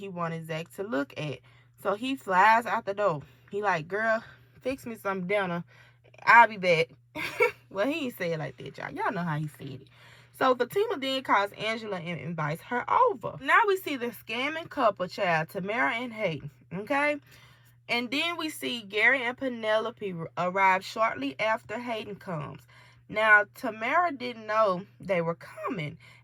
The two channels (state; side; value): identical; both; correlation 1.00